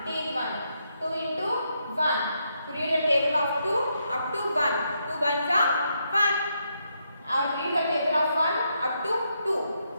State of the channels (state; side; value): inverted; both; correlation -0.79